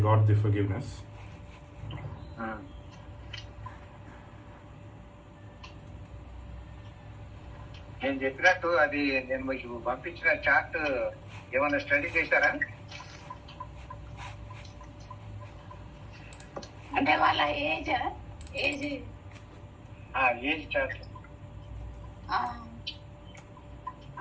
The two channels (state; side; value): identical; both; correlation 1.00